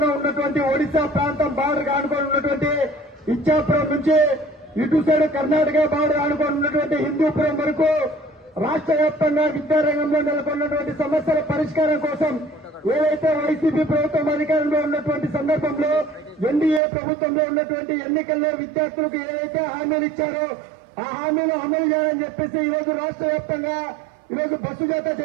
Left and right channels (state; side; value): drops out; left; at 16.8 s